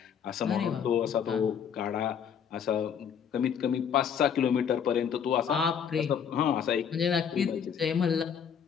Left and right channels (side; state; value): right; quieter; 7.7 dB